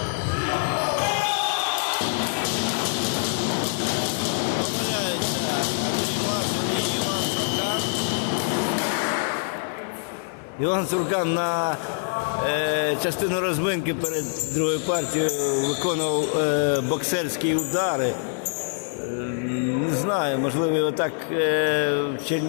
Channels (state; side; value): silent; right; 62 dB below the other